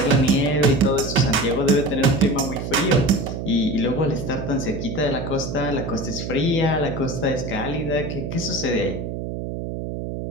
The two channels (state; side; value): noise; right; hum, 5 dB below the sound